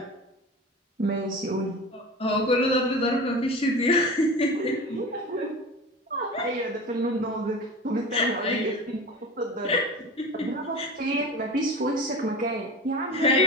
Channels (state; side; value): normal; both; correlation 0.33